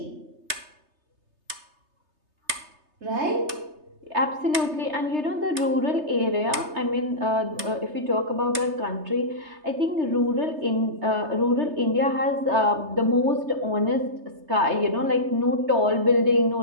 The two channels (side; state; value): left; late; 3.3 ms